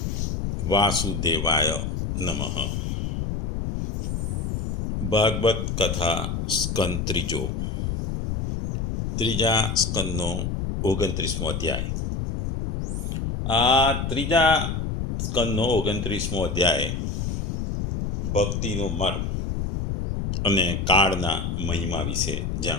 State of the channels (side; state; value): left; noise; rumble, 2 dB below the sound